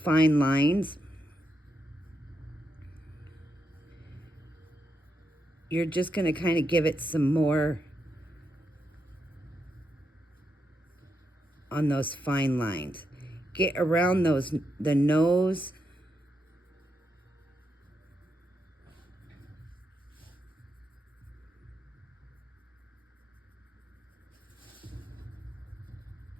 lines. You're just going to kind of give it some more on those fine lines. Get around the nose.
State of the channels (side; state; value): both; normal; correlation 0.83